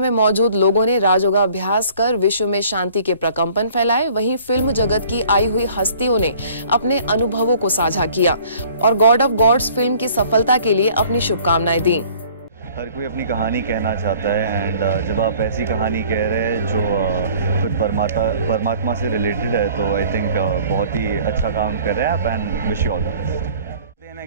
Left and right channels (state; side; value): inverted; both; correlation -0.53